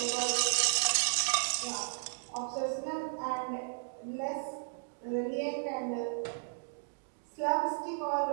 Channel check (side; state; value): left; silent; digital silence